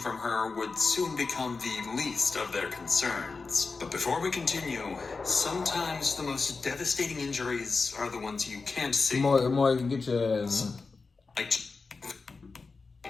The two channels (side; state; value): right; quieter; 4.3 dB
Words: her would soon become the least of their concerns. But before we continue, sometimes the most devastating injuries are the ones you can't see. More you can get your... Like,